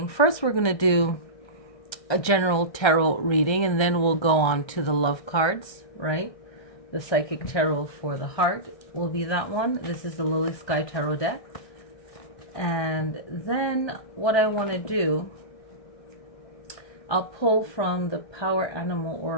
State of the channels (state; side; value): late; right; 1.3 ms